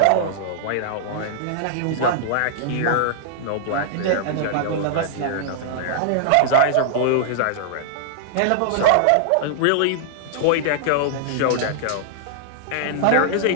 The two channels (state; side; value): different; both; correlation -0.01